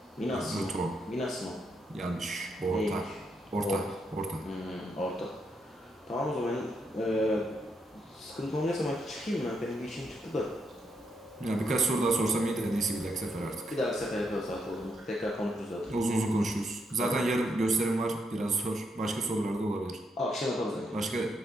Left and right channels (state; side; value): normal; both; correlation 0.79